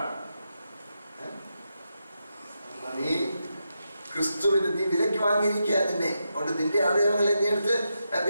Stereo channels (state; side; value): inverted; both; correlation -0.86